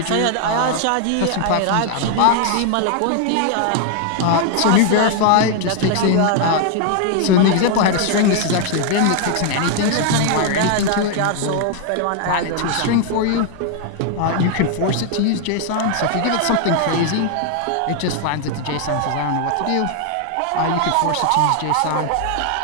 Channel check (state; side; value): different; both; correlation 0.00